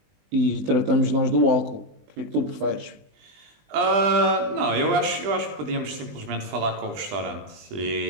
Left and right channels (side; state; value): left; late; 20 ms